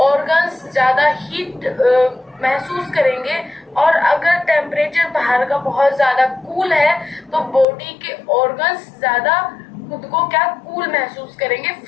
ऑर्गन्स ज्यादा हीट महसूस करेंगे, और अगर टेम्परेचर बाहर का बहुत ज्यादा कूल है तो बॉडी के ऑर्गन्स ज्यादा खुद को क्या कूल महसूस करेंगे,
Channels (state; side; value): drops out; right; at 7.7 s